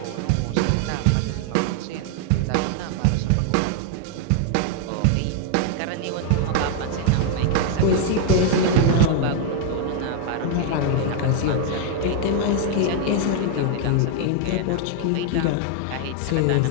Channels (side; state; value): both; different; correlation 0.00